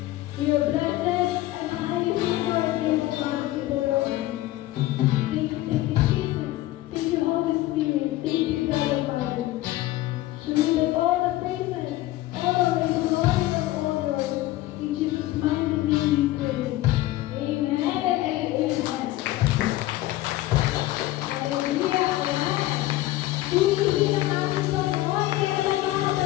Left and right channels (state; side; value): quieter; right; 16.5 dB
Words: are blessed and highly favored in God, Lord. Thank you, Jesus. Thank you, Holy Spirit. Thank you, God Almighty. To you all the praises, honor, and glory are all yours. In Jesus' mighty name we pray. Amen and amen. Hallelujah. Amen. Tuwing ang ating Panginoon, kaya lang mga